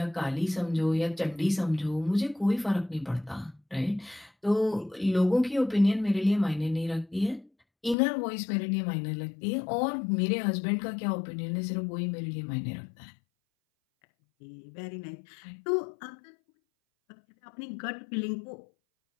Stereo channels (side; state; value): right; drops out; at 8.0 s